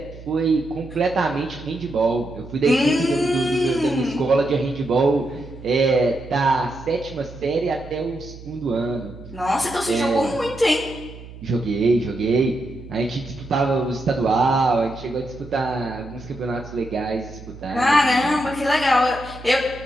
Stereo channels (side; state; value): right; noise; hum, 16 dB below the sound